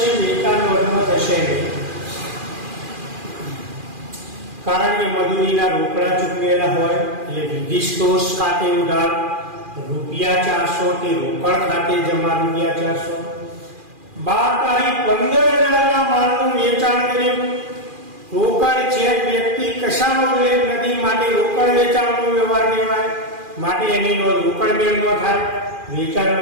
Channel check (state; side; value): late; left; 2.4 ms